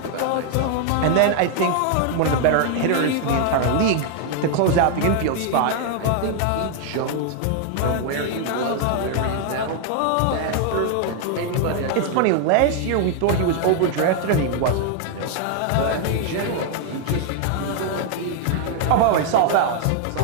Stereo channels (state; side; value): different; both; correlation 0.00